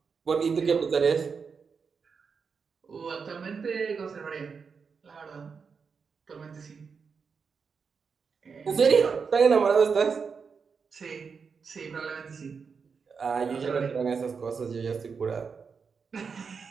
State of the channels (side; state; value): left; quieter; 5.6 dB